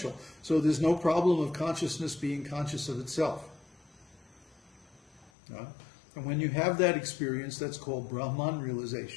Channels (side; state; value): right; drops out; at 5.3 s